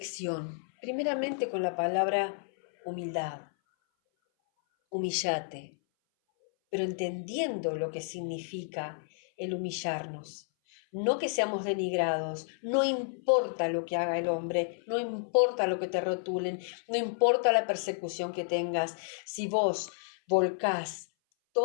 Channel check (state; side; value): silent; right; 57 dB below the other